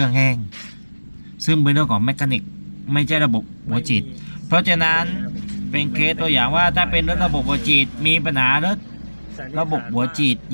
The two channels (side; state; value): both; inverted; correlation -1.00